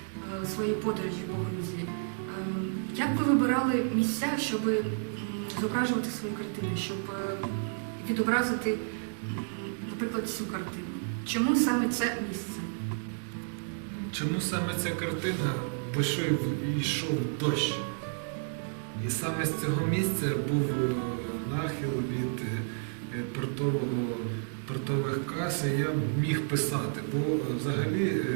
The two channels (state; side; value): silent; left; digital silence